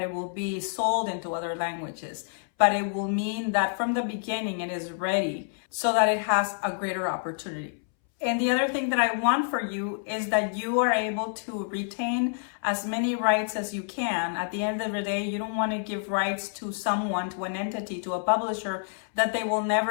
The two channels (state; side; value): silent; right; 59 dB below the other